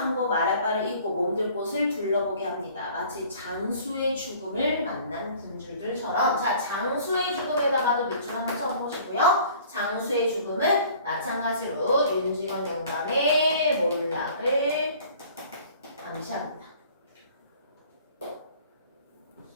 말할 바를 잊고 몸들 곳을 둘러보게 합니다. 마치 장수의 죽음을 만난 군주들처럼. 자, 장수의 죽음에다가도 밑줄 한번 쳐보시고요. 장수의 죽음은 마찬가지로 윤직원 영감의 몰락을 암시합니다.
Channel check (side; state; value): both; inverted; correlation -0.51